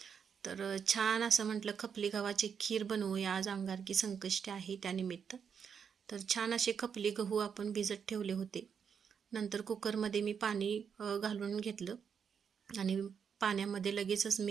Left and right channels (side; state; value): left; quieter; 7.0 dB